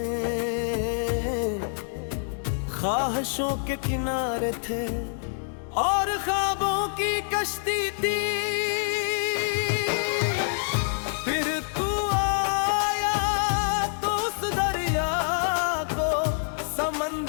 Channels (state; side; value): silent; right; digital silence